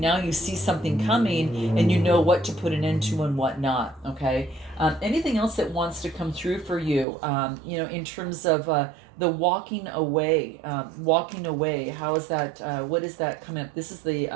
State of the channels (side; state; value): left; drops out; at 7.1 s